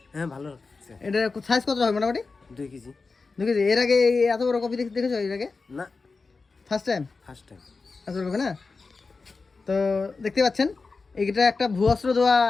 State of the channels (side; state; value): right; quieter; 4.2 dB